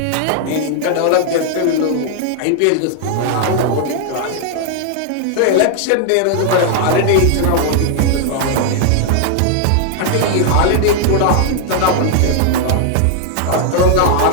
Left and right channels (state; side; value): different; both; correlation 0.00